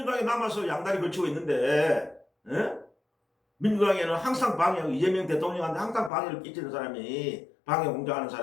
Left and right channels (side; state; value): right; drops out; at 6.1 s